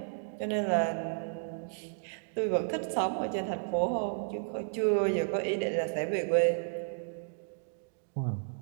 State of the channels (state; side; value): silent; left; digital silence